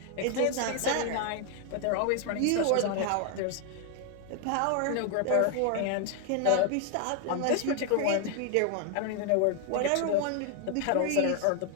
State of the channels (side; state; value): both; different; correlation 0.00